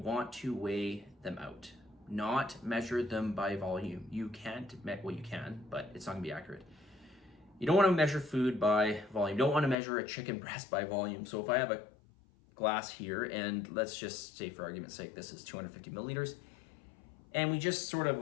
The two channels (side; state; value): right; drops out; at 9.8 s